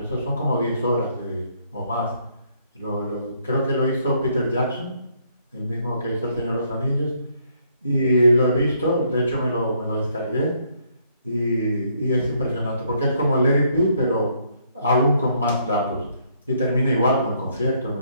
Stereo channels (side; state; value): both; inverted; correlation -0.69